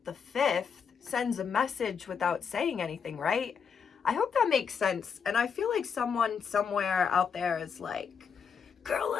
the 5th sends a message without saying anything, right? I hope that makes sense. And I feel like someone somewhere out there is like, girl,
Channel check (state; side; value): quieter; right; 6.6 dB